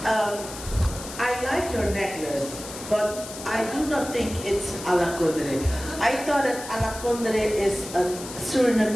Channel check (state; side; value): noise; left; hiss, 12 dB below the sound